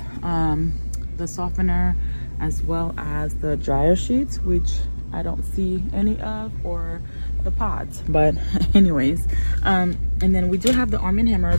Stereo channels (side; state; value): both; inverted; correlation -1.00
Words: the softener, as well as the dryer sheets, which I don't see any of, or the pods, but anyways, and then we do have the Arm & Hammer